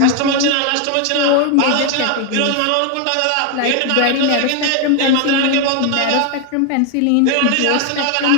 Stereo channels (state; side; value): different; both; correlation 0.01